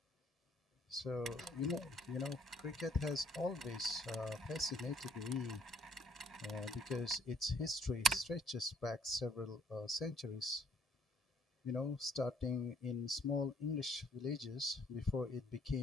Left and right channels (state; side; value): normal; both; correlation 0.62